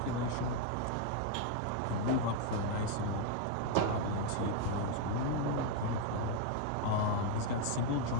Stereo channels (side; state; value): both; different; correlation 0.00